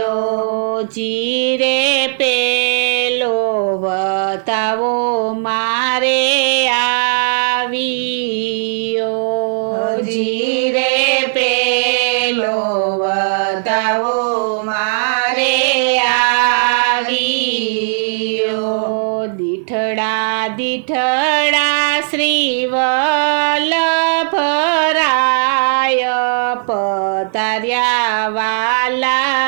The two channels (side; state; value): left; silent; digital silence